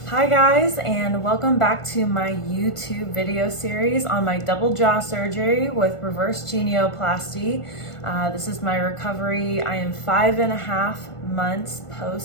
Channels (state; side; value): late; right; 1.5 ms